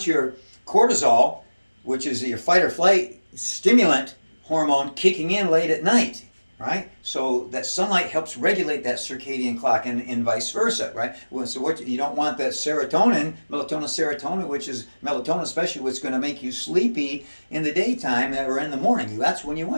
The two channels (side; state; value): both; inverted; correlation -1.00